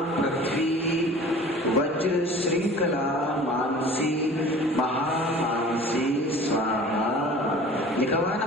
पृथ्वी वज्र श्रृंखला मानसी महामानसी स्वाहा। लिखा हुआ है ना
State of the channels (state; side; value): normal; both; correlation 0.44